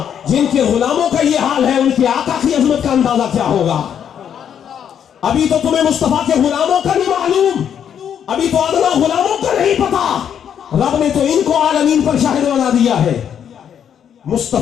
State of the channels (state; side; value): quieter; right; 8.7 dB